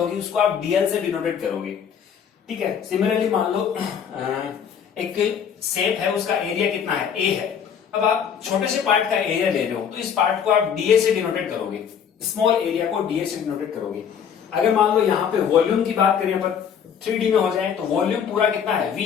उसको आप डीएल से डिनोटेट करोगे। ठीक है, सिमिलरली मान लो एक शेप है, उसका एरिया कितना है, ए है, अब आप छोटे से पार्ट का एरिया ले रहे हो, तो इस पार्ट को आप डीए से डिनोटेट करोगे, स्मॉल एरिया को डीए से डिनोटेट करोगे। अगर मान लो यहाँ पे वॉल्यूम की बात करें अपन 3D में हो जाए, तो वॉल्यूम पूरा कितना है,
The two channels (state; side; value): quieter; right; 7.8 dB